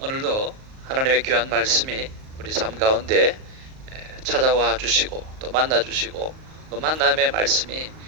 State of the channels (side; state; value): left; late; 38 ms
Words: 하나님의 귀한 말씀이 우리 삶 가운데 찾아와 주시고 또 만나 주시고 그 만남의 말씀이